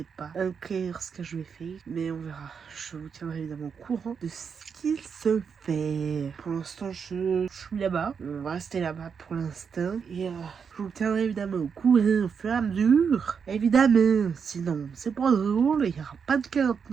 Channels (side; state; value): left; quieter; 6.4 dB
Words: pas encore ce que je vais faire, mais on verra. Je vous tiendrai évidemment au courant de ce qu'il se fait. Pour l'instant, je suis là-bas. On va rester là-bas pour l'instant. Et je vous tiendrai évidemment au courant au fur et à mesure. Évidemment. Sinon, c'est pas drôle. Il n'y aura pas de